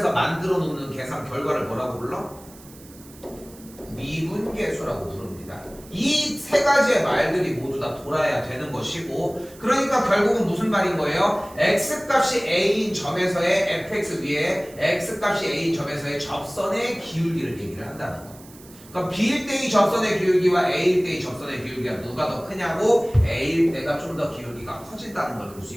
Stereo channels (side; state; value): right; noise; hiss, 22 dB below the sound